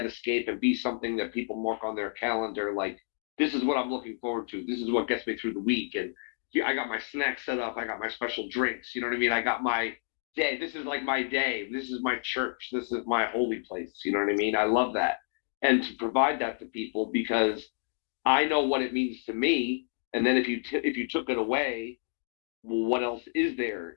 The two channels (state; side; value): silent; right; 57 dB below the other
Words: escape and be something that people mark on their calendar. Like, this is what I'm looking forward to. This is what gets me through the week. And I got my snacks set up. I got my special drinks. You know what I mean? I got my day. This is like my day. This is my church. This is my holy place. You know what I mean? I love that. And to provide that to people, because I know what it means to me. And then if you took it away, well, what else is there,